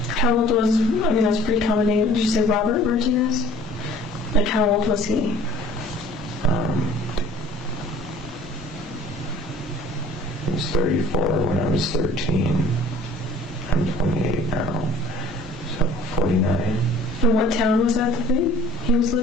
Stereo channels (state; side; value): normal; both; correlation 0.51